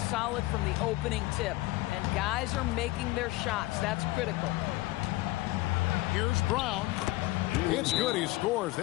solid from the opening tip, and guys are making their shots. That's critical. Here's Brown. It's good. He scores.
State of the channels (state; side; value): quieter; right; 19.7 dB